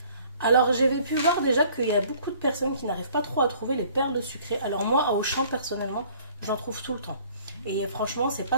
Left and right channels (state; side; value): inverted; both; correlation -0.55